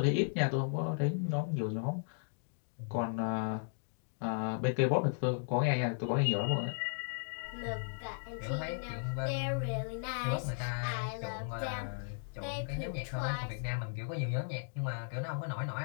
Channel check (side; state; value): right; silent; digital silence